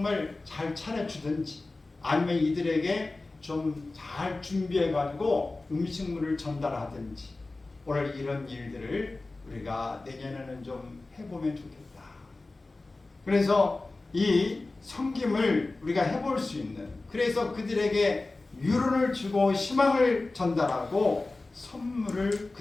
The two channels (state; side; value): quieter; right; 3.3 dB